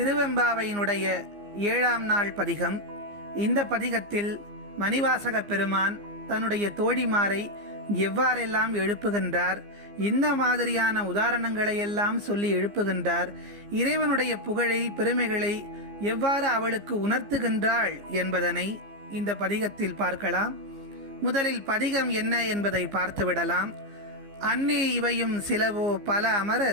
7ஆம் நாள் பதிகம். இந்த பதிகத்தில் மணிவாசக பெருமான் தன்னுடைய தோழிமாரை எவ்வாறெல்லாம் எழுப்புகின்றார், இந்த மாதிரியான உதாரணங்களை எல்லாம் சொல்லி எழுப்புகின்றார், இறைவனுடைய புகழை பெருமைகளை எவ்வாறு அவளுக்கு உணர்த்துகின்றாள் என்பதனை இந்த பதிகத்தில் பார்க்கலாம். முதலில் பதிகம் என்ன என்பதை பார்த்துவிடலாம். அன்னே இவையும் சிலவோ பல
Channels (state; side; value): late; left; 15 ms